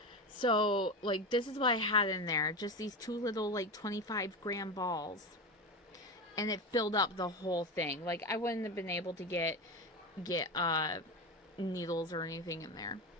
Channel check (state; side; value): normal; both; correlation 0.21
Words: So, like, this is what I had in there. Just these 2 little, like, 25-gram balls. And it filled up the whole thing. Like, I wouldn't have been able to get needles or anything in there.